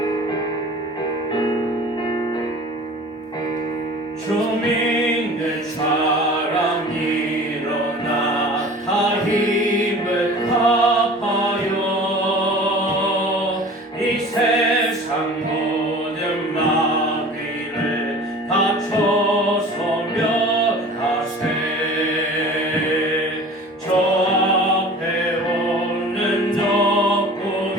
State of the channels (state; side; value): normal; both; correlation 0.42